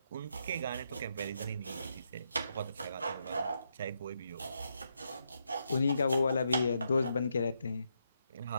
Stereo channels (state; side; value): inverted; both; correlation -0.80